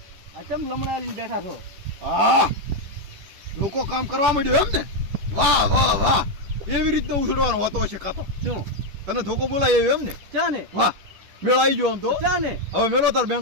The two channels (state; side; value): late; left; 10 ms